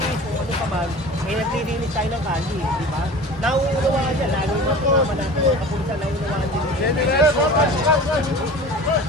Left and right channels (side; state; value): both; normal; correlation 0.38